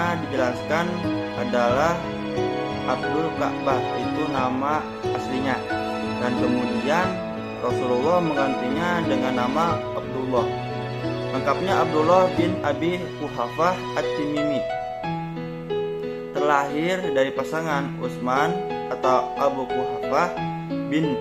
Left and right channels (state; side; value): identical; both; correlation 1.00